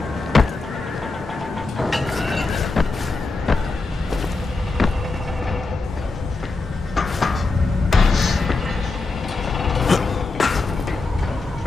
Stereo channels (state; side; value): quieter; right; 3.7 dB